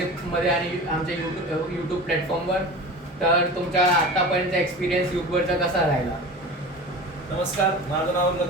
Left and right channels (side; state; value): both; normal; correlation 0.34